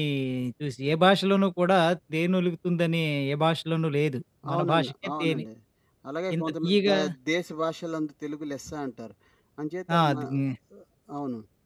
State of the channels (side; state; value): both; identical; correlation 1.00